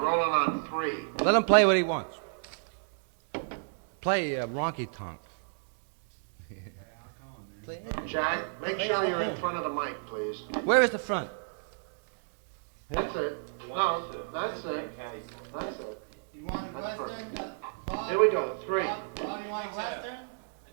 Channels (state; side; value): silent; left; digital silence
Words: on 3. Let him play what he wants. Play Ronky Tonk. Jack, make sure you're in front of the mic, please. Where is the front? That's it. No, that's it. That's it. You want a Western, Bob? Here we go. 3. Bob, you want a Western? You